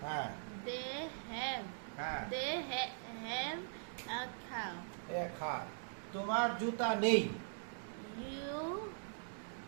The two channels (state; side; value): silent; left; digital silence